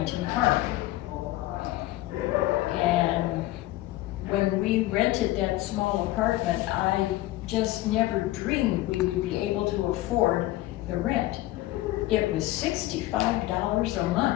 Park. And when we rented that small apartment, I just never dreamed we would be able to afford the rent. It was $65 a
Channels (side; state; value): right; quieter; 16.9 dB